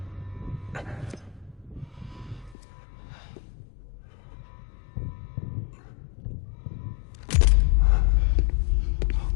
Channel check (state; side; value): drops out; right; at 2.6 s